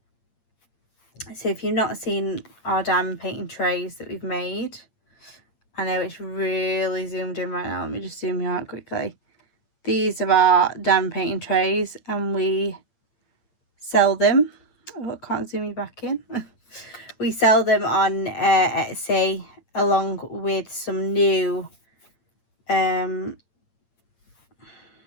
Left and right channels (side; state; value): right; late; 8.7 ms